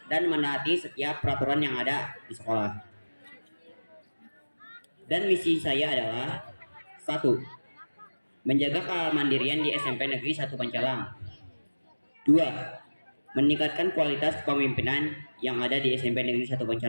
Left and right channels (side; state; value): both; inverted; correlation -1.00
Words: dan menaati setiap peraturan yang ada di sekolah. Dan misi saya adalah 1. Menjaga kemandirian di SMP Negeri 1 Pancalang. 2. Meningkatkan kualitas kepemimpinan yang ada di SMP Negeri 1